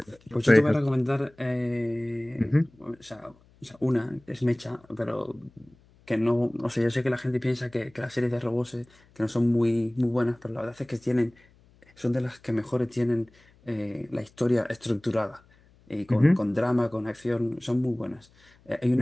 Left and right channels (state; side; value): noise; left; hum, 30 dB below the sound